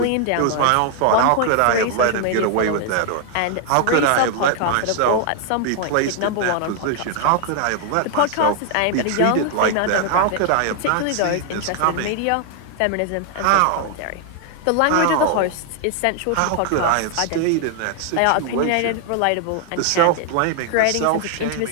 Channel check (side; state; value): both; different; correlation 0.00